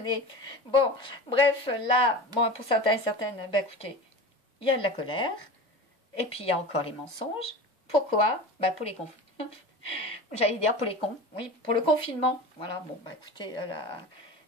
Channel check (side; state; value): both; normal; correlation 0.32